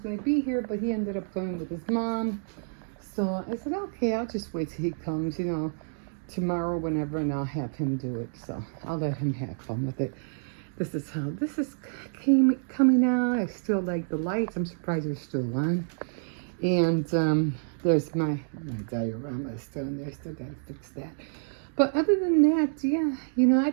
to be here, but he ended up going with his mom. So I said, okay, I'll just wait till he comes, tomorrow, whenever, and I'll have him do it. So I'll let him have fun with it. This is how this is coming out. I still like the lights. I'm surprised they're still on. And there's my diorama still in there. Still got to fix that. But other than that, yeah, I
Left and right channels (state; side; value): silent; left; digital silence